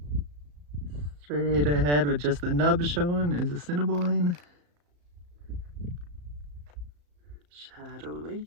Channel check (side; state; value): left; late; 34 ms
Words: Straight ahead with just the nub showing is Assiniboine. Shadow Lake,